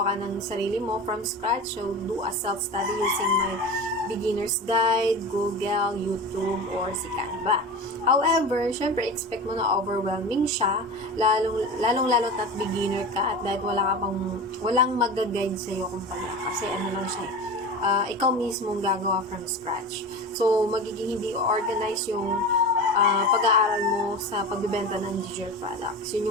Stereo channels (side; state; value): both; normal; correlation 0.30